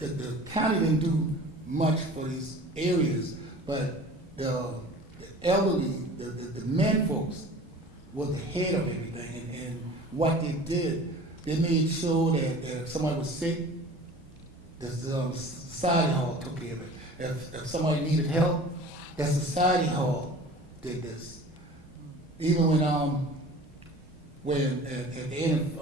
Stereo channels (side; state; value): both; normal; correlation 0.42